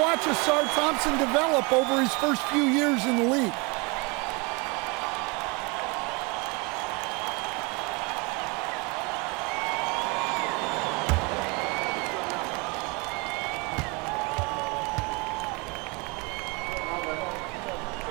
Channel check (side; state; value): left; quieter; 28.7 dB